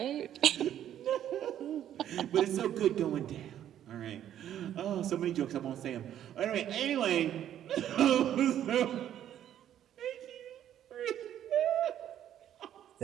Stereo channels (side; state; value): left; quieter; 10.9 dB